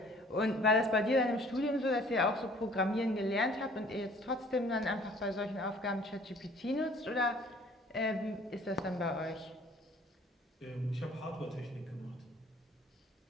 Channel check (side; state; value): both; normal; correlation 0.54